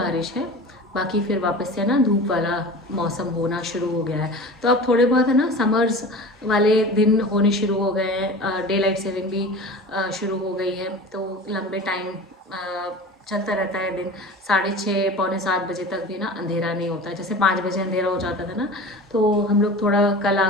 है, बाकी फिर वापस से ना धूप वाला मौसम होना शुरू हो गया है। तो अब थोड़े बहुत है ना समर्स वाले दिन होने शुरू हो गए हैं, डे लाइट सेविंग भी शुरू हो गई है, तो लंबे टाइम चलता रहता है दिन। 6:30 पौने 7 बजे तक भी ना अंधेरा नहीं होता है। जैसे 5 बजे अंधेरा हो जाता था ना, तो हम लोग थोड़ा कल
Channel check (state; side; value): normal; both; correlation 0.35